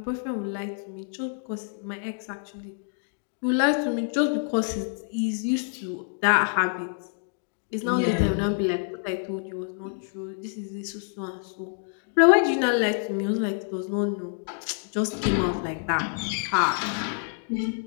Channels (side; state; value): right; silent; 60 dB below the other